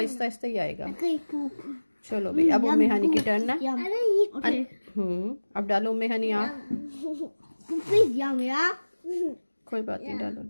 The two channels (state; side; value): inverted; both; correlation -1.00